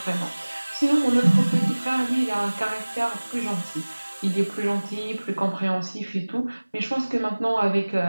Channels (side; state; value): both; inverted; correlation -1.00